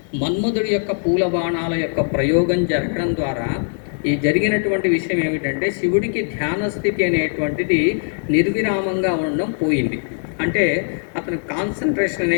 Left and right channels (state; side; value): silent; right; 59 dB below the other